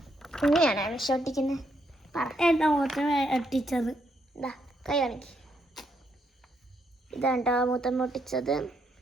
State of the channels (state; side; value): normal; both; correlation 0.76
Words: ഇങ്ങനെയാണ് വിഷൊട്ടിക്കുന്നത്. എന്താ മൂത്തം ഒട്ടിച്ചത്? ഇതാ കൈ കാണിക്ക്. ഇതാണ്ടോ മൂത്തം ഒട്ടിച്ചത്.